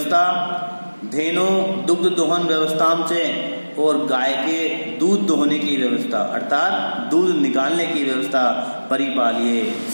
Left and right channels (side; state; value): both; inverted; correlation -1.00